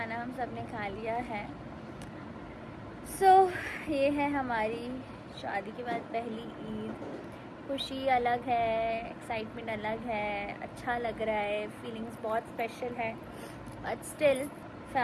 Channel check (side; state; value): both; identical; correlation 1.00